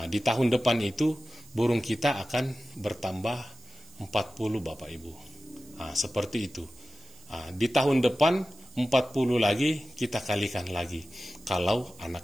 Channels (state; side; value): noise; right; hiss, 24 dB below the sound